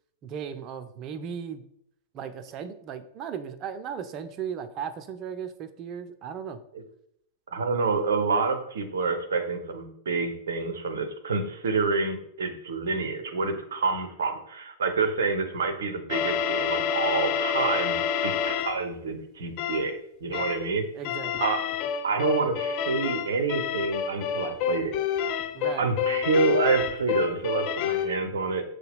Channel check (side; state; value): both; inverted; correlation -0.32